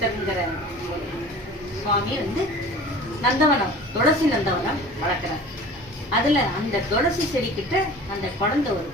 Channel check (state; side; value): normal; both; correlation 0.41